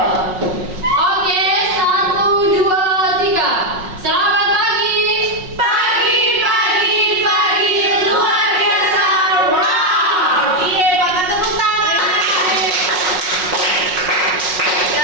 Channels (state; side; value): late; left; 5.5 ms